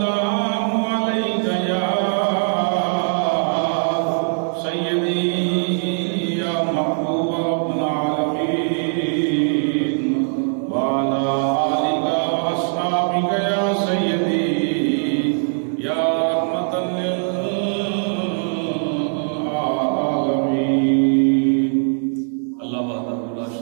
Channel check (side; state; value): left; silent; digital silence